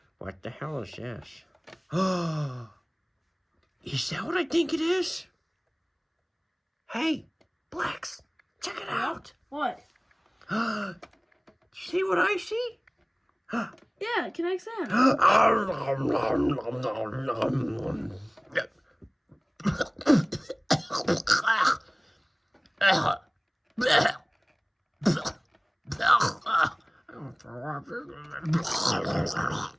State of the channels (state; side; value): identical; both; correlation 1.00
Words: What the hell is this? Is that what I think it is? Hey, Blex, check it out. What? See what I see? Yeah, kinetic sand.